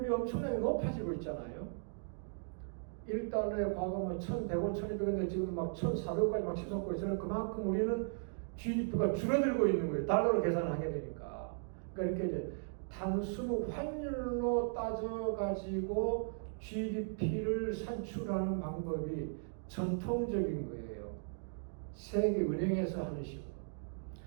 엄청나게 높아지고 있잖아요. 1달러에 과거 뭐 1,100원, 1,200원인데 지금 막 1,400원까지 막 치솟고 있어요. 그만큼 우리는 GDP가 줄어들고 있는 거예요. 달러로 계산을 하게 되니까. 그러니까 이렇게 이제 단순 환율로 따져가지고 GDP를 산출하는 방법이 전통적인 거예요. 세계 은행에서 하는 식으로.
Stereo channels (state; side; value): silent; left; digital silence